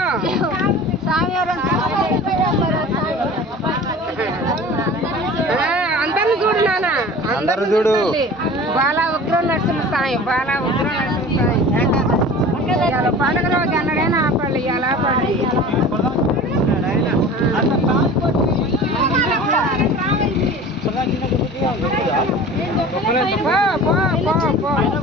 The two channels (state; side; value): normal; both; correlation 0.39